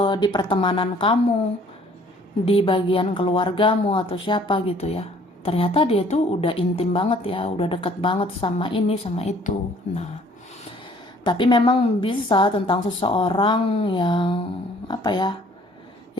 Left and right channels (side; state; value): both; normal; correlation 0.57